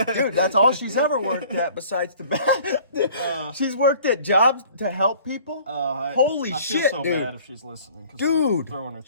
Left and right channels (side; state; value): both; inverted; correlation -0.51